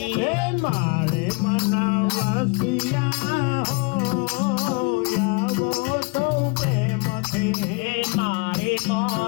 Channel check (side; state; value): right; quieter; 29.6 dB